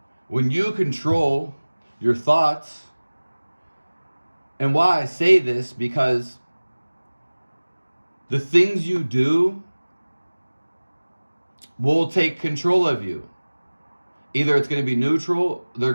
when you control your thoughts, and why I say this, because the things you do will take control of you. Either it's going to be neutral, they're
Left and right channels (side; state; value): both; inverted; correlation -1.00